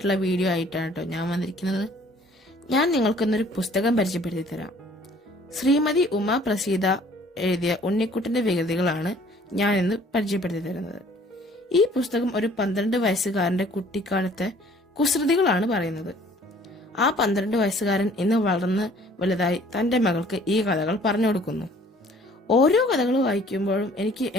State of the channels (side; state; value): both; normal; correlation 0.56